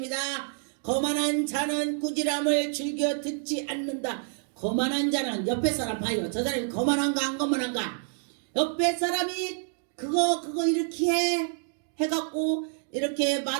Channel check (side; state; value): left; silent; digital silence